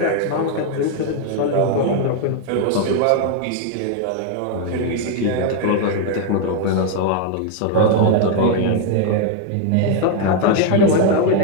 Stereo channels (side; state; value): both; different; correlation 0.00